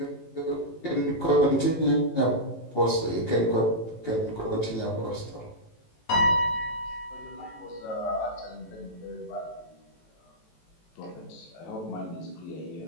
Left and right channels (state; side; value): late; right; 18 ms